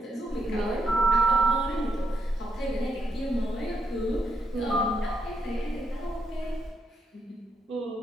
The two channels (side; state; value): both; normal; correlation 0.79